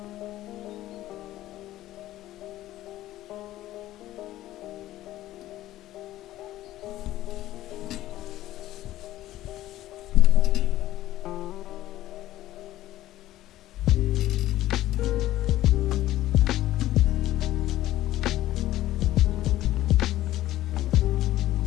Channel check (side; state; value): right; quieter; 14.7 dB